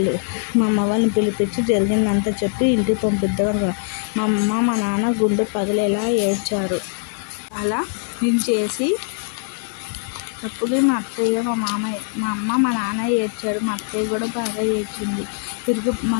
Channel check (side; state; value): right; silent; 56 dB below the other